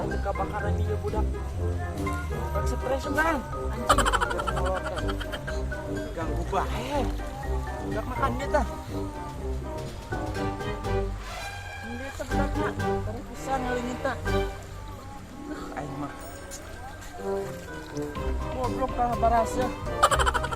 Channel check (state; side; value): identical; both; correlation 1.00